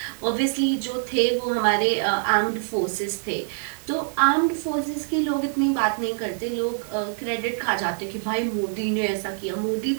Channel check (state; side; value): silent; left; digital silence